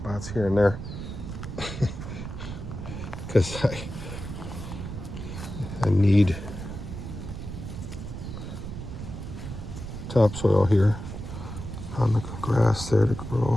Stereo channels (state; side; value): noise; right; rumble, 8 dB below the sound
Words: here and there. Because I need topsoil here on the grass there to